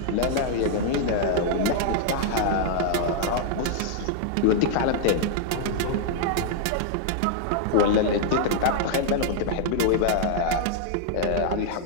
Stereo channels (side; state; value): both; different; correlation -0.01